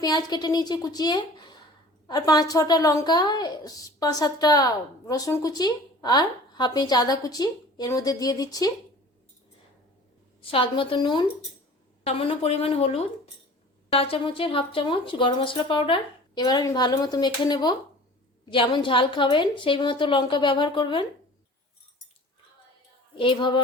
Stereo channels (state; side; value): normal; both; correlation 0.44